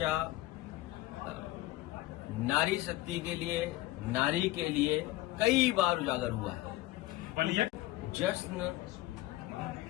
नारी शक्ति के लिए, नारी के लिए कई बार उजागर हुआ है। जश्न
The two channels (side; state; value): right; quieter; 17.4 dB